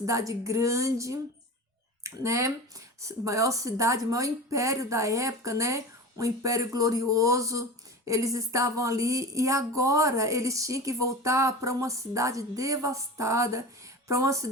grande, né? Maior cidade, maior império da época, né? Um império glorioso. Eles estavam ali e agora eles tinham que voltar para uma cidade devastada, para uma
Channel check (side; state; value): both; normal; correlation 0.31